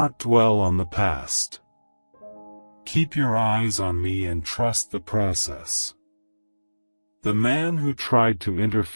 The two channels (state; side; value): inverted; both; correlation -1.00